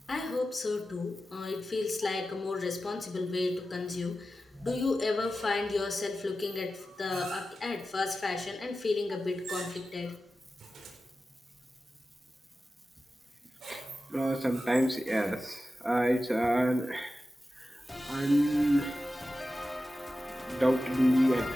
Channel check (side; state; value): both; normal; correlation 0.93